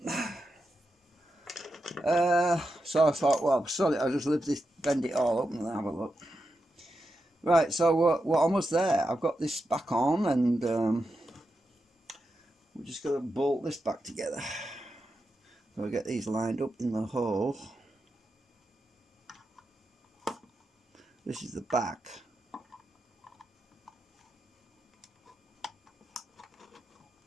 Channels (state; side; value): normal; both; correlation 0.88